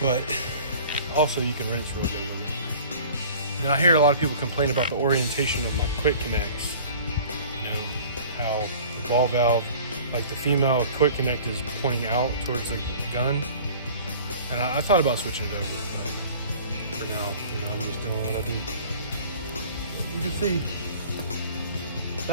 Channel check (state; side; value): inverted; both; correlation -0.46